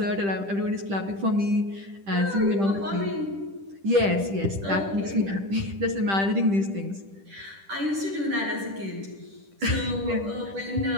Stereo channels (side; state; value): left; late; 10 ms